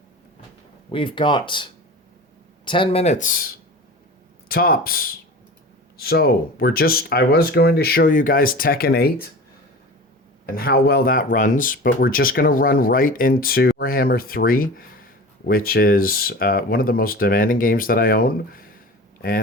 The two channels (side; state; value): both; normal; correlation 0.35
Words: We've got 10 minutes tops. So I was going to show you guys Tekken 8 and how well that runs, but we're just going to run right into Warhammer 3, which is one of the most demanding games that I own.